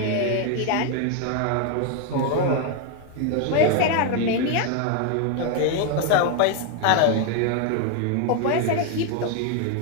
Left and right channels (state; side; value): different; both; correlation 0.01